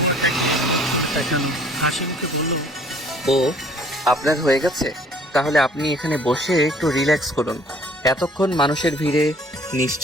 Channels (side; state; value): both; normal; correlation 0.56